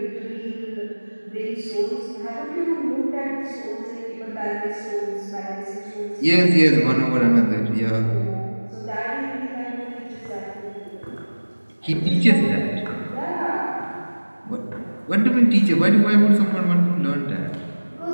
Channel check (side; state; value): both; inverted; correlation -1.00